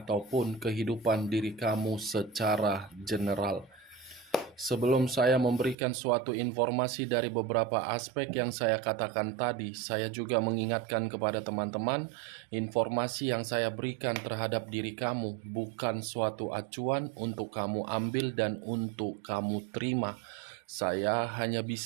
kehidupan diri kamu secara general. Sebelum saya memberikan suatu informasi dari beberapa aspek yang saya katakan tadi, saya juga mengingatkan kepada teman-teman, informasi yang saya berikan terhadap diri kamu bukan suatu acuan untuk kamu ambil dan untuk kamu terima. Saya hanya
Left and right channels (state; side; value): drops out; left; at 5.8 s